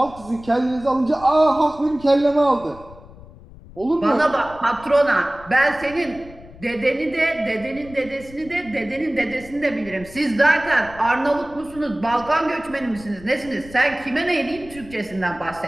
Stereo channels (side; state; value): left; noise; rumble, 19 dB below the sound